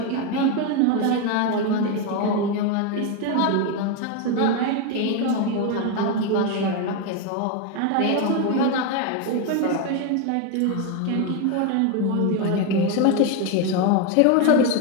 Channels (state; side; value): different; both; correlation 0.02